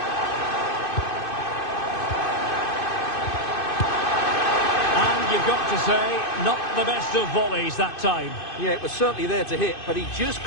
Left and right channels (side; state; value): right; late; 2.5 ms